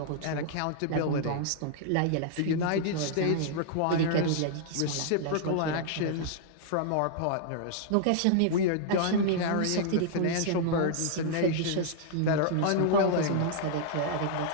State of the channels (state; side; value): different; both; correlation -0.01